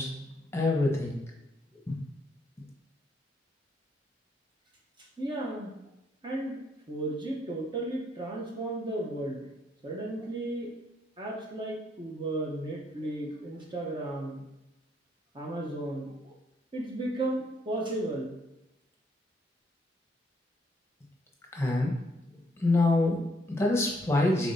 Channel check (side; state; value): both; normal; correlation 0.71